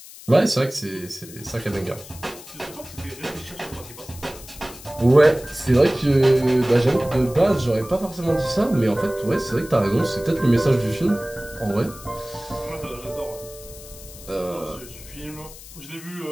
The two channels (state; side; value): noise; left; hiss, 17 dB below the sound